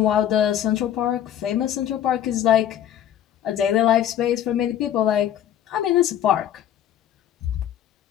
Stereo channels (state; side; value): quieter; right; 10.8 dB